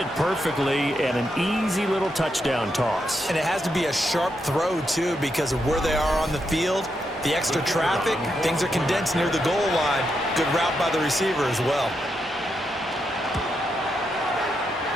perfectly, and an easy little touchdown toss. And it has to be a sharp throw, too, because of where they are on the field. The extra traffic, things are condensed near the goal line. Good route by the receiver as well.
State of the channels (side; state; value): both; normal; correlation 0.83